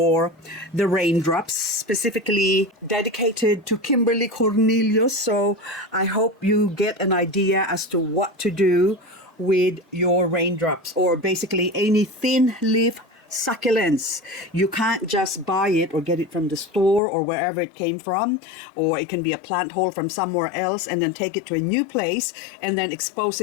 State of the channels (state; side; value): drops out; right; at 17.0 s